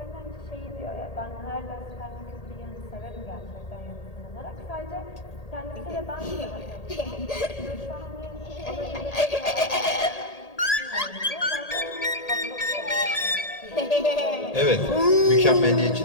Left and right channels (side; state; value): right; late; 1.8 ms